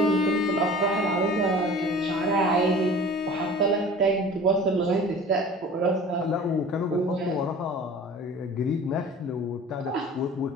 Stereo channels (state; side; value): normal; both; correlation 0.42